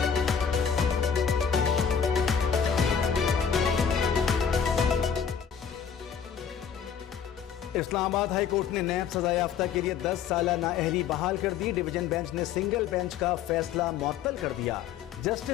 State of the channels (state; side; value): quieter; right; 7.5 dB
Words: Islamabad high court ने नैब सजा याफ्ता के लिए 10 साल नाअहली बहाल कर दी। डिवीजन बेंच ने सिंगल बेंच का फैसला मुअत्तल कर दिया।